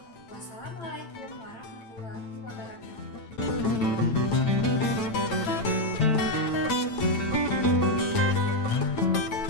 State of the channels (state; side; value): late; right; 9.0 ms